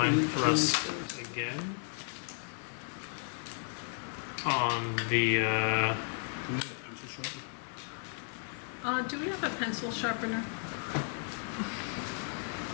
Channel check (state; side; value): silent; right; 55 dB below the other